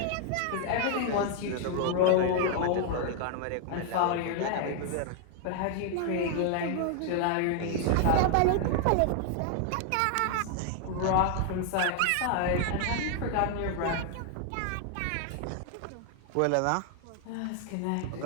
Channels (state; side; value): different; both; correlation 0.00